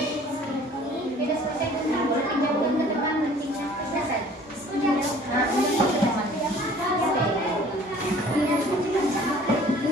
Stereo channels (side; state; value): both; normal; correlation 0.51